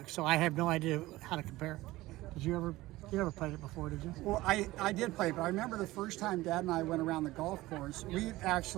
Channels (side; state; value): left; quieter; 18.2 dB